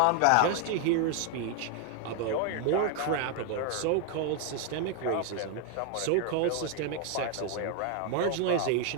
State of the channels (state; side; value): different; both; correlation 0.00